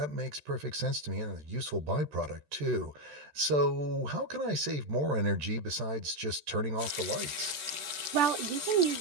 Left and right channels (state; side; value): late; left; 13 ms